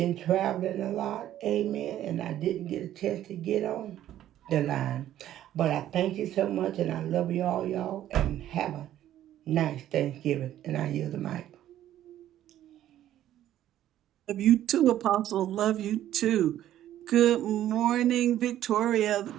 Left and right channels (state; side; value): quieter; left; 12.3 dB